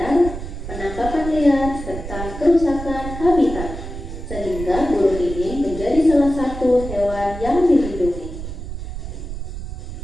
penangkapan liar, serta kerusakan habitat, sehingga burung ini menjadi salah satu hewan yang dilindungi.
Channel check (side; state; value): right; noise; rumble, 8 dB below the sound